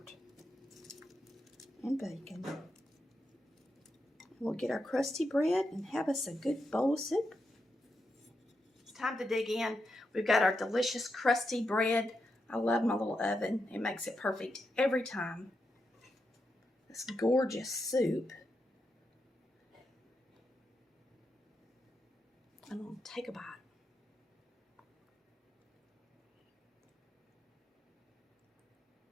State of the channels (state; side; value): normal; both; correlation 0.85